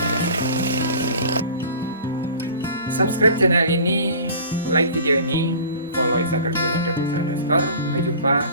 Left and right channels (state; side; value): inverted; both; correlation -0.42